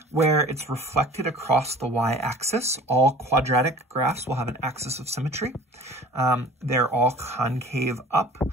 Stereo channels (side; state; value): both; normal; correlation 0.45